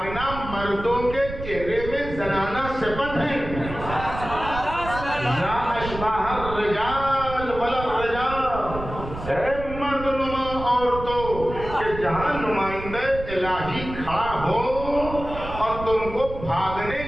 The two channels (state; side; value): noise; right; rumble, 10 dB below the sound